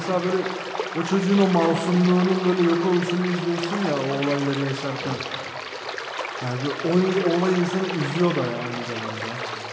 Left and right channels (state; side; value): identical; both; correlation 1.00